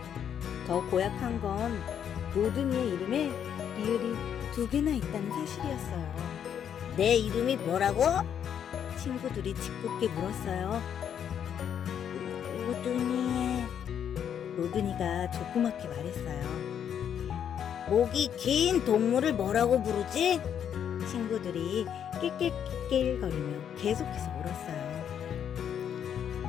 더 고약한 건 로드니의 이름에 리을이 2개나 있다는 사실이었어요. 내 이름이 뭐라고? 친구들이 짓궂게 물었어요. 오드니. 로드니가 조그맣게 말했어요. 목이 긴 동물을 뭐라고 부르지? 친구들이 낄낄낄낄거리며 계속해서 물었어요.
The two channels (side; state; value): right; quieter; 8.8 dB